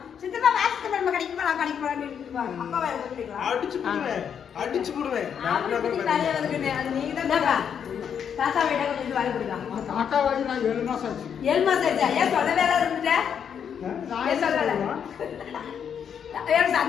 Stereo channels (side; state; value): right; quieter; 7.9 dB